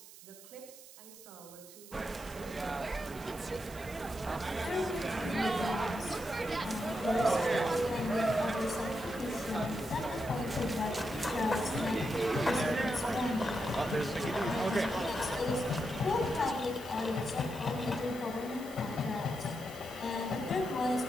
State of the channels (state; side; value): noise; right; hiss, 18 dB below the sound